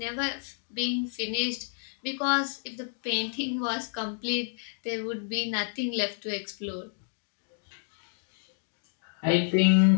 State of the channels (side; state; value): right; silent; digital silence